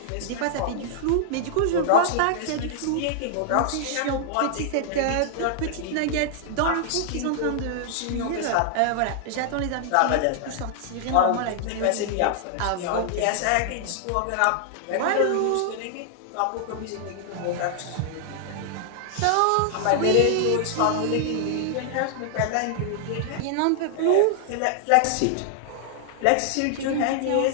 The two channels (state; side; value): different; both; correlation -0.01